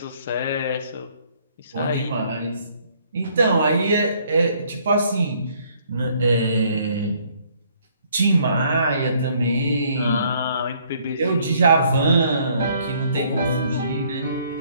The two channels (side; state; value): both; inverted; correlation -0.64